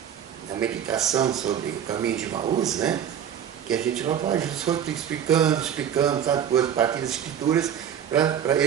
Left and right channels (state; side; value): quieter; left; 9.2 dB